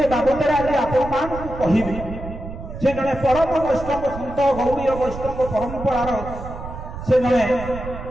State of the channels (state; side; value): noise; right; rumble, 10 dB below the sound